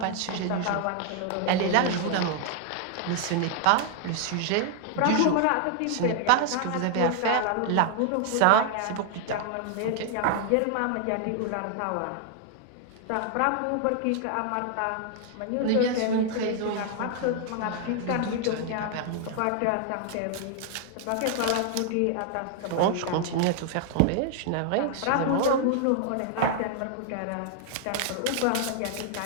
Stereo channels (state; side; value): different; both; correlation 0.00